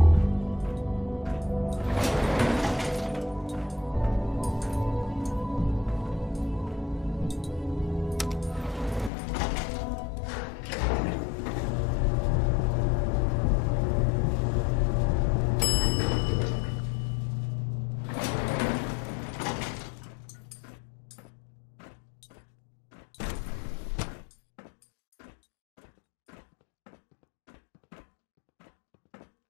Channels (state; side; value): drops out; right; at 9.1 s